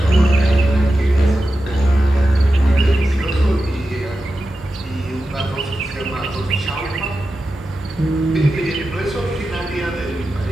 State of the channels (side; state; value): both; normal; correlation 0.92